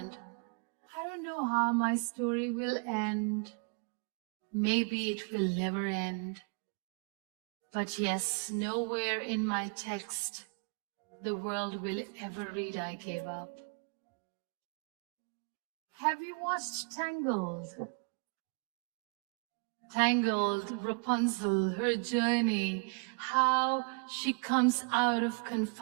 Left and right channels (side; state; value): left; quieter; 37.3 dB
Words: I don't know how my story will end. Maybe it will never end. But yes, nowhere in my text the world will ever read I gave up. Have you watched Tangled? Tangled, Rapunzel, her journey, how she comes out of